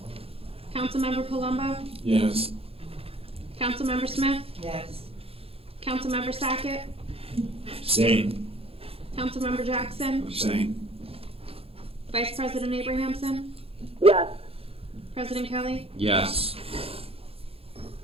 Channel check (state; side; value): late; left; 0.28 ms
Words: Councilmember Palumbo. Yes. Councilmember Smith. Yes. Councilmember Sackett. Abstain. Councilmember Jackson. Abstain. Vice President Abrahamson. Yes. President Kelly. Yes.